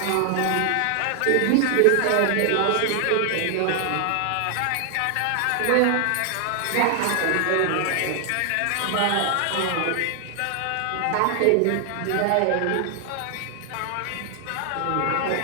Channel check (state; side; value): different; both; correlation 0.00